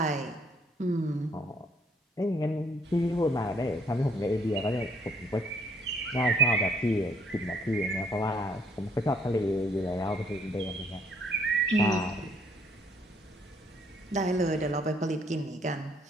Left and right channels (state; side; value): normal; both; correlation 0.65